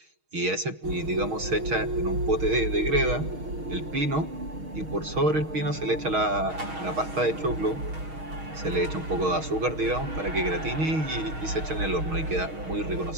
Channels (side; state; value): left; late; 6.4 ms